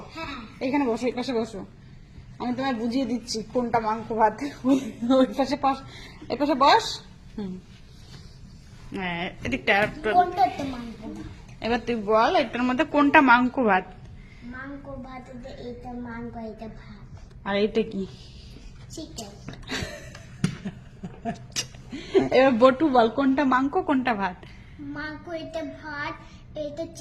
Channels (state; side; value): identical; both; correlation 1.00